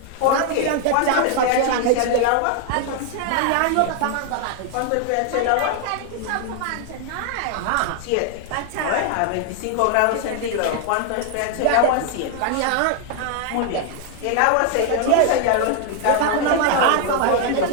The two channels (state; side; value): different; both; correlation 0.00